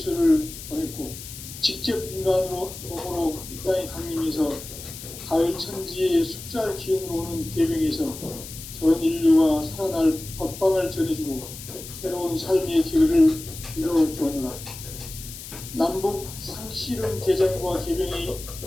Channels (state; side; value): noise; left; hiss, 12 dB below the sound